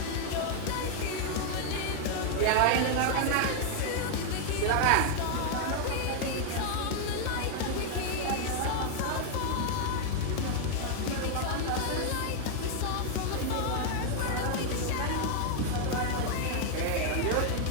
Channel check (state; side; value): different; both; correlation 0.00